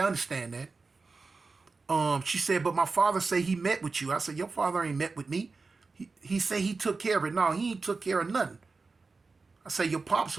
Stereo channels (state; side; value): quieter; left; 4.1 dB